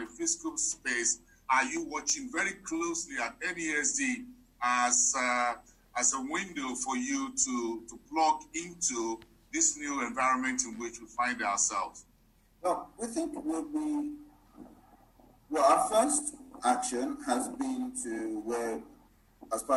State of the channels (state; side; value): identical; both; correlation 1.00